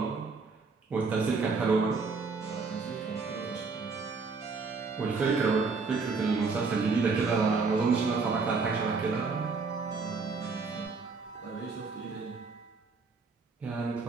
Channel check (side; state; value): left; quieter; 4.5 dB